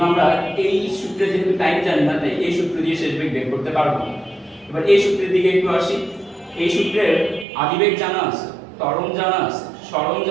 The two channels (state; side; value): drops out; left; at 7.5 s